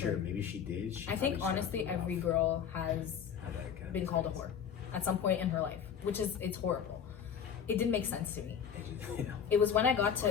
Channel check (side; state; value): right; quieter; 7.7 dB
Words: maybe she did. I think honestly, every girl has been called a whore at some point in her life, it's horrible. It didn't make sense to me. It was when I got